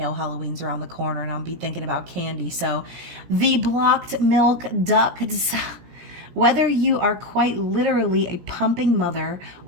Halloween's around the corner and I'll be thinking about candy. So the blocked milk ducts. Whether you are quite literally a pumping mother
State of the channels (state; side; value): late; left; 17 ms